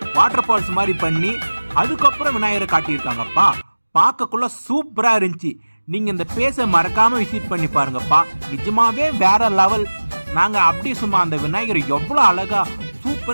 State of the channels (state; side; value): inverted; both; correlation -1.00